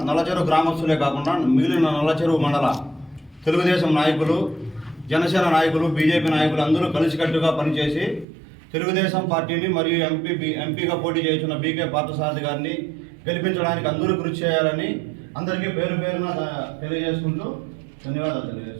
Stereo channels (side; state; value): left; drops out; at 8.2 s